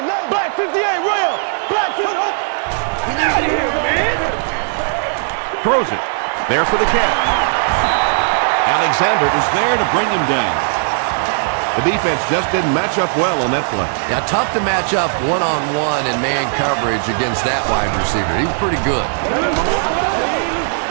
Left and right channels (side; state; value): left; silent; 58 dB below the other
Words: 90. Black 58. Rail. Black 58. Throws it. There for the catch. Alexander is there to bring him down. The defense just didn't match up well on that play. Yeah, tough to match up one-on-one in man coverage against that wide receiver. He's pretty good.